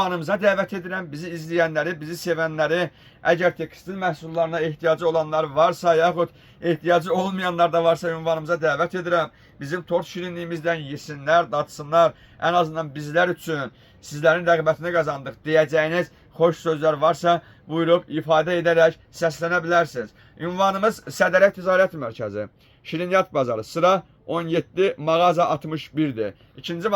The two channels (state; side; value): identical; both; correlation 1.00